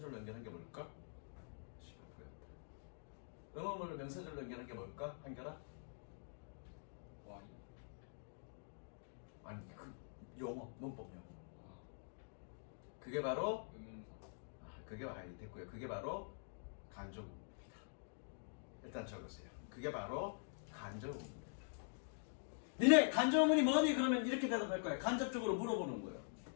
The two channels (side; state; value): right; silent; digital silence